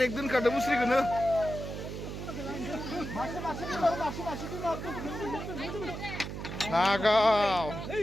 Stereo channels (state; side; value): noise; right; hum, 7 dB below the sound